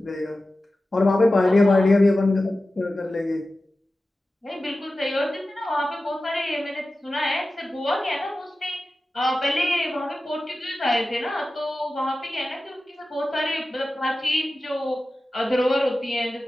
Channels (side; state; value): both; normal; correlation 0.95